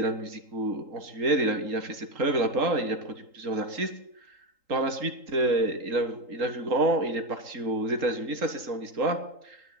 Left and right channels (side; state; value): left; late; 3.8 ms